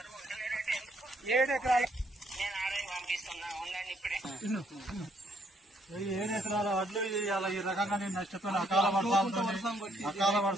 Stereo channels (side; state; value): both; normal; correlation 0.70